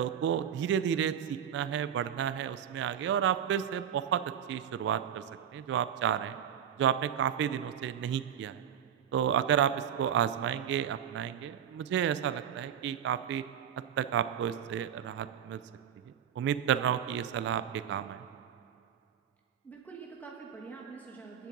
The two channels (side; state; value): left; quieter; 9.2 dB